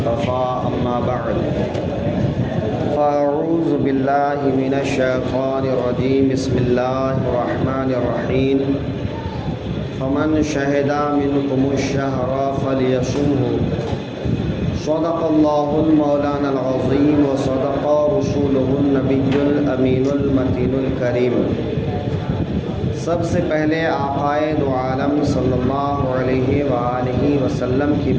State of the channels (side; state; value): both; identical; correlation 1.00